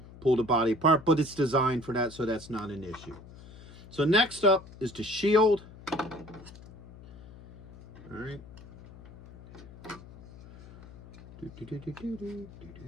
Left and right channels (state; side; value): noise; left; hum, 18 dB below the sound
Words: pull the body apart, but it's designed for that, so that's not an issue. So next up is the shield. All right.